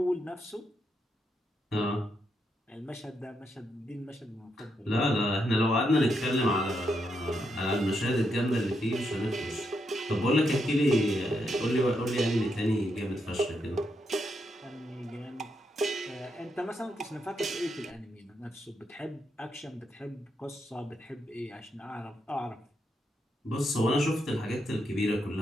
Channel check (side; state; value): both; normal; correlation 0.81